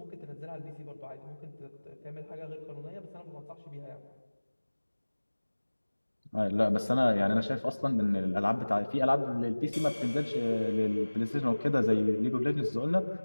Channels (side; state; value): both; inverted; correlation -1.00